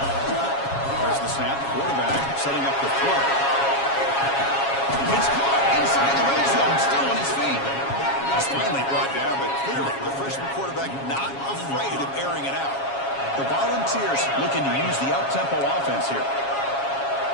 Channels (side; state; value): right; late; 7.3 ms